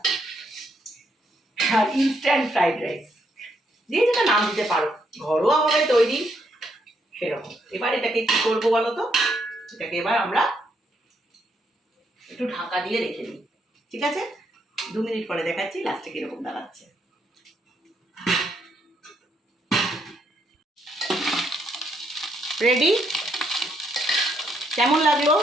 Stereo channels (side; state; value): both; normal; correlation 0.75